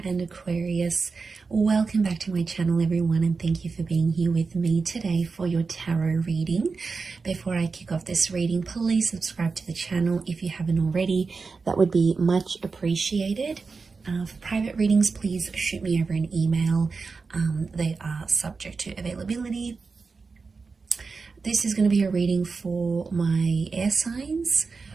and Aquarius. Welcome back to my channel everyone, and thank you for being here with me today for your tarot reading. Before I kick off this reading, please subscribe to the channel if you haven't already. That would be much appreciated. For private readings, please shoot me over an email. They are subject to availability. This is going to be a reading for my air signs.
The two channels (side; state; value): left; quieter; 4.5 dB